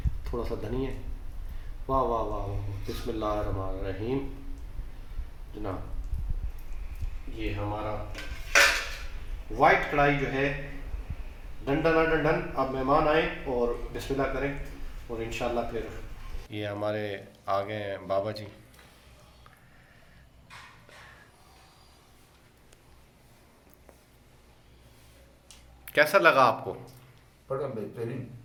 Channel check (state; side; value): identical; both; correlation 1.00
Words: थोड़ा सा धनिया। वाह वाह वाह वाह, बिस्मिल्लाहिर्रहमानिर्रहीम। जनाब ये हमारा वाइट कढ़ाई जो है डंडन डंडन। अब मेहमान आए और बिस्मिल्लाह करें और इंशाल्लाह फिर ये हमारे आ गए हैं बाबा जी। कैसा लगा आपको? बड़ा बेहतरीन।